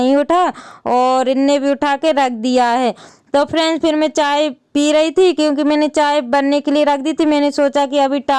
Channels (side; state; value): both; identical; correlation 1.00